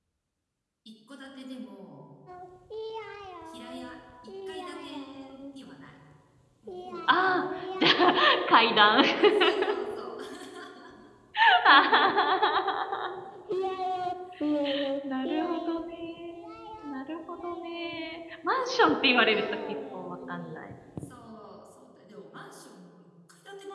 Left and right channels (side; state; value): both; identical; correlation 1.00